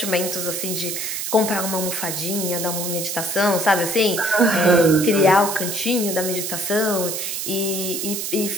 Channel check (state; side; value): noise; right; hiss, 3 dB below the sound